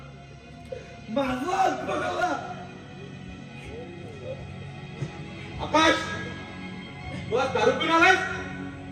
माझा हात बघायला. आकाश तू आज दारू पिऊन आलायस?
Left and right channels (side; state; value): both; identical; correlation 1.00